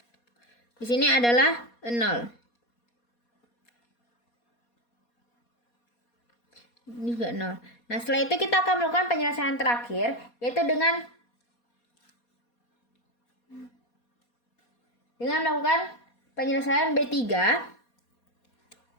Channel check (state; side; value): late; right; 4.2 ms